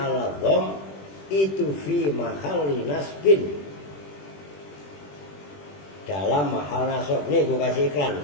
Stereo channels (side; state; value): right; late; 21 ms